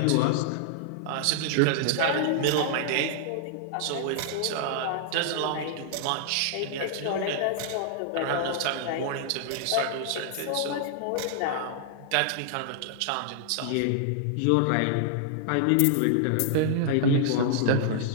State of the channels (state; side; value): different; both; correlation -0.01